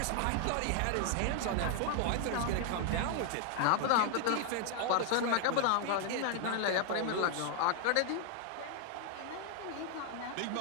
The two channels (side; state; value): both; different; correlation 0.00